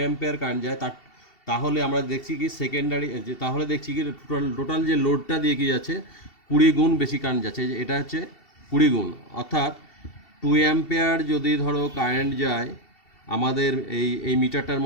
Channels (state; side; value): late; right; 2.7 ms